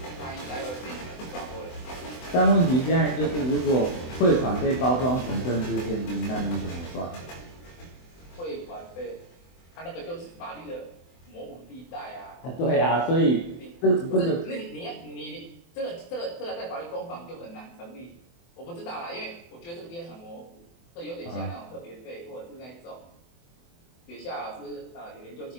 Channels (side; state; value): right; late; 24 ms